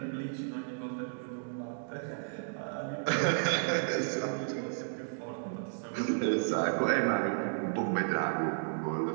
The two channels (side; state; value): left; silent; digital silence